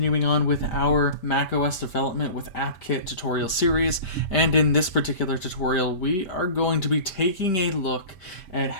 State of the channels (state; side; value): late; right; 5.1 ms